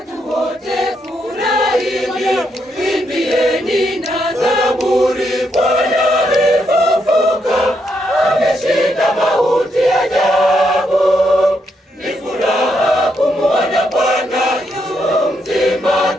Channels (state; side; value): normal; both; correlation 0.78